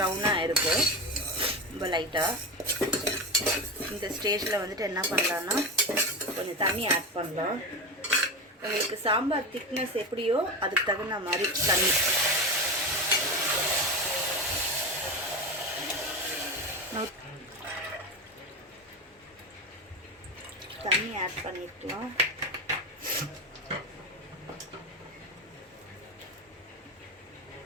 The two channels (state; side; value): normal; both; correlation 0.20